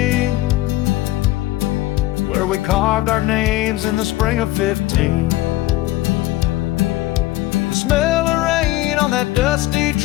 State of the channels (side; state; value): right; quieter; 16.9 dB